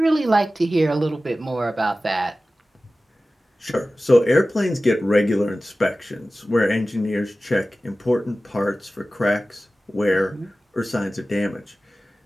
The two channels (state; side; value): normal; both; correlation 0.96